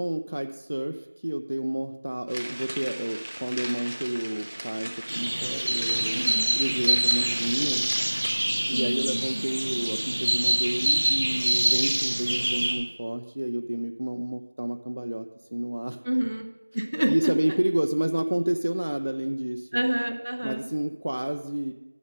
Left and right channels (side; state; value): both; inverted; correlation -1.00